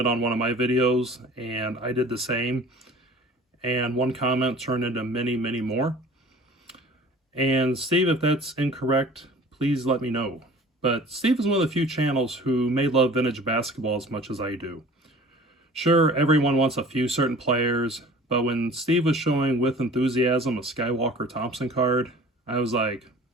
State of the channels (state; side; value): normal; both; correlation 0.45